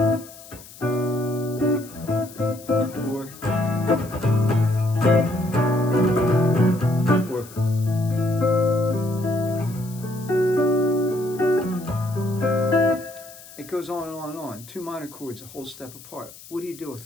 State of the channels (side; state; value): left; noise; hiss, 19 dB below the sound